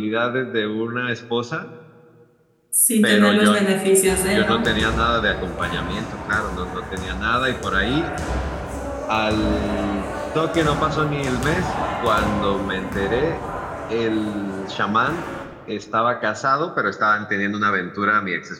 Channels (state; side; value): identical; both; correlation 1.00